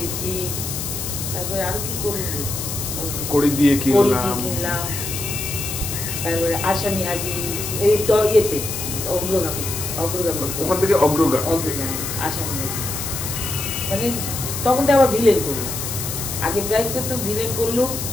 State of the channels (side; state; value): left; noise; hiss, 5 dB below the sound